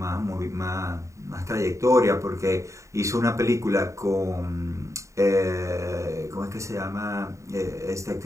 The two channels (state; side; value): late; left; 0.15 ms